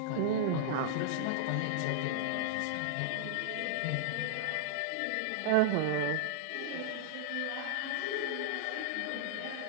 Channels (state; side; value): different; both; correlation -0.01